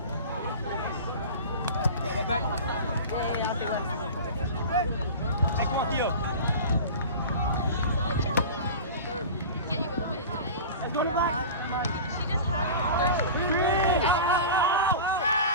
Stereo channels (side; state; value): both; inverted; correlation -0.33